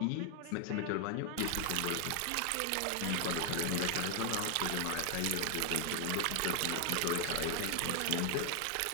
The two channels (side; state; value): both; different; correlation 0.00